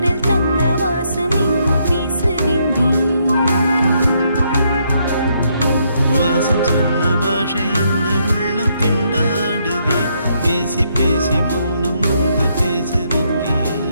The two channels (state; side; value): inverted; both; correlation -0.74